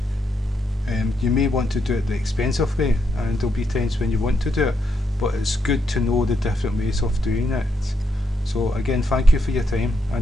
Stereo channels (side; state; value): both; normal; correlation 0.79